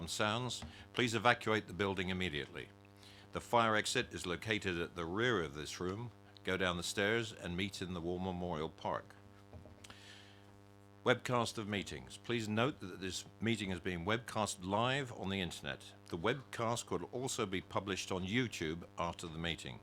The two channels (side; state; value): both; identical; correlation 1.00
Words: sounds, please evacuate the building immediately. The fire exit is located at the rear of this room. Go down the stairs and meet in the War Memorial Park. Webcast of meetings. Please note that this meeting is being webcast live on the internet. The webcast could also be published on YouTube after the meeting.